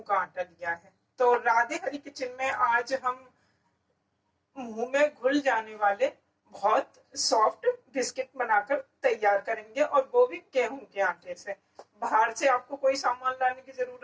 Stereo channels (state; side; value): identical; both; correlation 1.00